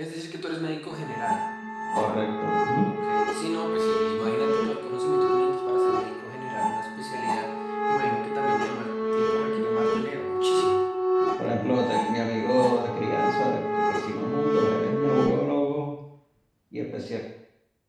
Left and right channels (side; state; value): both; identical; correlation 1.00